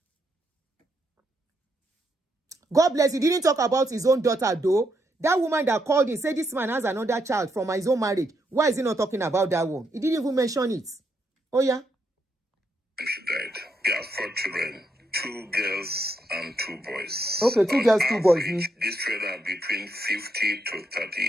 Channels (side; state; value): both; normal; correlation 0.78